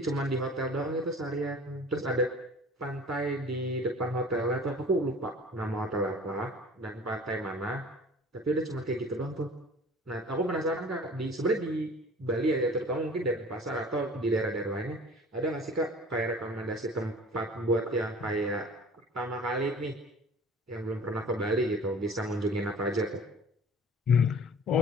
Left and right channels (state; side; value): normal; both; correlation 0.45